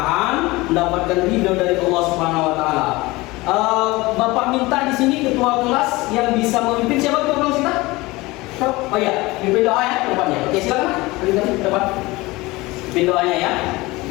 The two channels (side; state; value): right; quieter; 21.4 dB